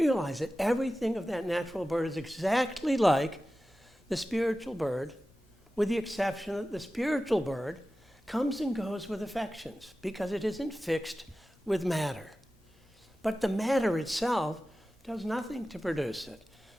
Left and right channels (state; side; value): normal; both; correlation 0.95